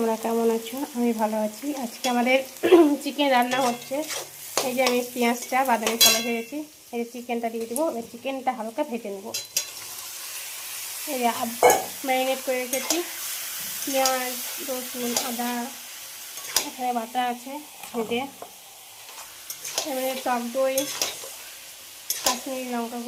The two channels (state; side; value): identical; both; correlation 1.00